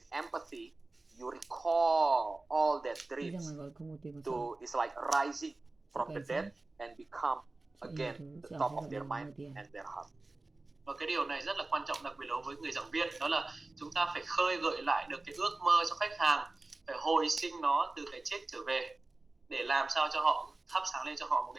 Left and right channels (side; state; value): left; quieter; 3.2 dB